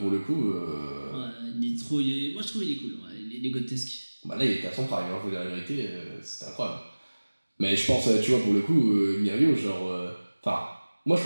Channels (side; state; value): both; inverted; correlation -1.00